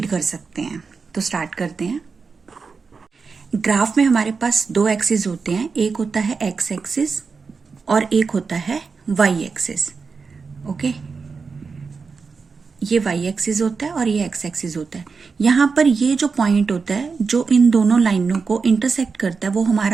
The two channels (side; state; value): left; quieter; 4.9 dB